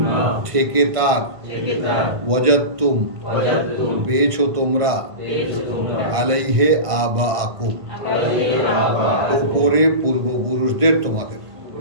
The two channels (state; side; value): late; left; 1.5 ms